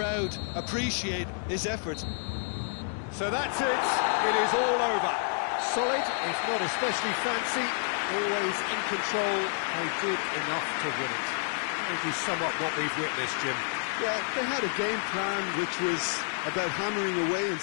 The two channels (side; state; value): right; silent; 58 dB below the other